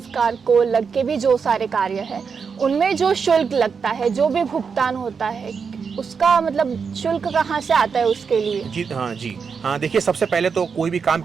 को लग के भी जो सारे कार्य हैं, उनमें जो शुल्क लगता है, जो भी भुगतान होता है, उसका मतलब शुल्क कहाँ से आता है उसके लिए? जी हाँ, देखिए सबसे पहले तो कोई भी काम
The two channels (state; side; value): quieter; left; 5.8 dB